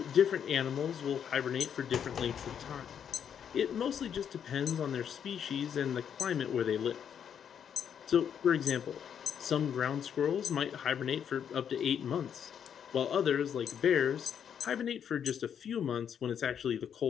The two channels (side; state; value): right; quieter; 8.3 dB